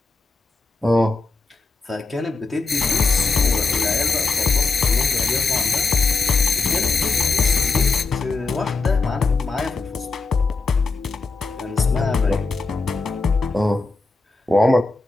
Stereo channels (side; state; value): right; quieter; 3.9 dB